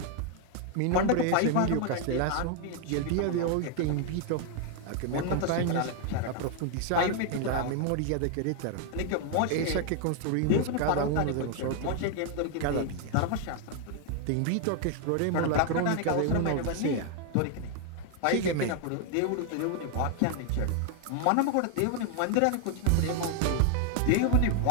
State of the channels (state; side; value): different; both; correlation 0.00